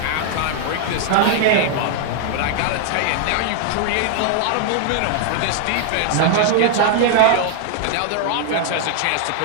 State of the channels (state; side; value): different; both; correlation 0.00